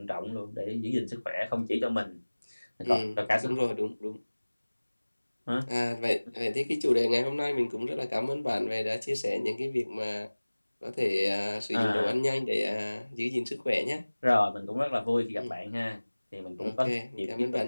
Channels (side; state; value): both; inverted; correlation -1.00